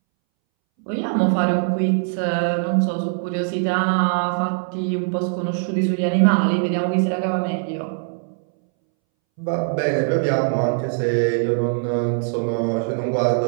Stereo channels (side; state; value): left; silent; 63 dB below the other